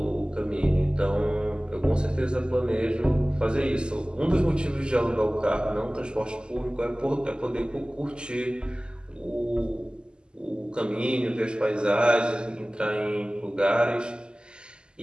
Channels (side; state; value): left; late; 0.048 ms